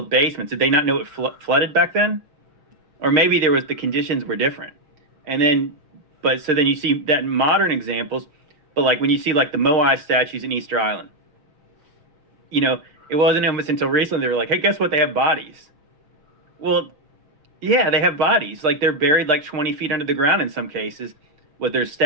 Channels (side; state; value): left; late; 6.4 ms